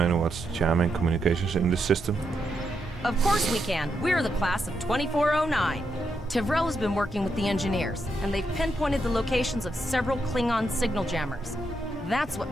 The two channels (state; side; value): normal; both; correlation 0.82